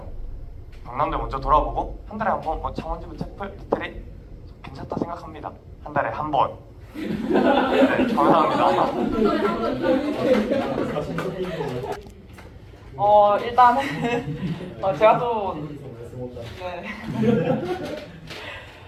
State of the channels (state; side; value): identical; both; correlation 1.00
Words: 경남대 먼저 돌아보고 한 달에 한 번 창원지구 채플 리트릿 괜찮다 생각합니다. 한 달에 한 번. 네, 감사합니다. 일단은 제가 또